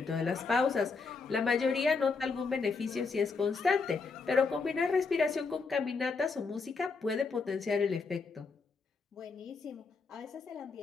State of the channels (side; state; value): right; quieter; 4.6 dB